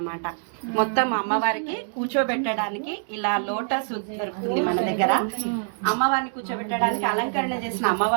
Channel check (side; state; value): left; silent; digital silence